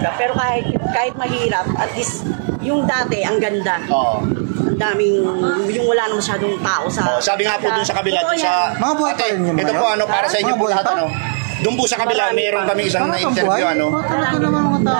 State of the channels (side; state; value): left; silent; digital silence